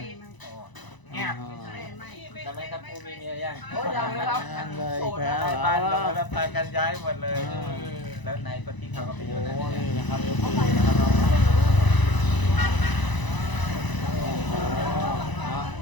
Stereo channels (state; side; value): late; right; 1.0 ms